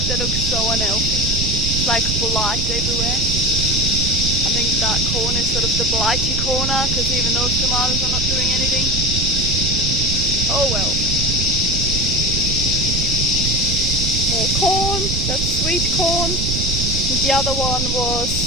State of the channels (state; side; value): noise; right; rumble, 1 dB below the sound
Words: they look so unhealthy. It's like blight everywhere. I think that corner is sort of the blighty corner, because even those tomatoes are not doing anything. Oh well. More corn, that's sweet corn. And the other one was